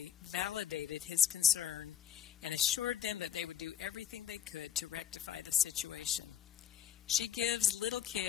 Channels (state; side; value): quieter; right; 10.3 dB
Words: validated his concern and assured them that they would do everything they could to rectify the situation. She gives little